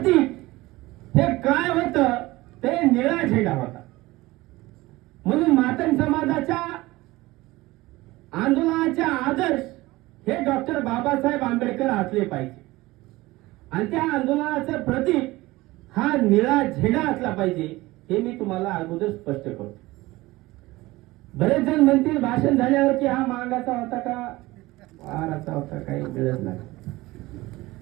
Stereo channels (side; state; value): left; quieter; 19.6 dB